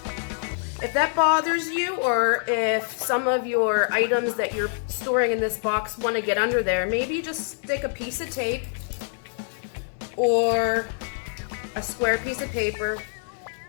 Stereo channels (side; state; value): right; silent; digital silence